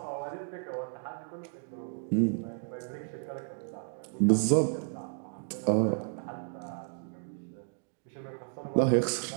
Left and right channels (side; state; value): left; silent; 56 dB below the other